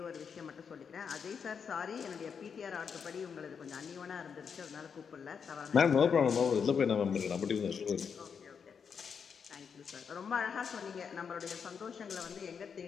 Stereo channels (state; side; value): quieter; right; 6.6 dB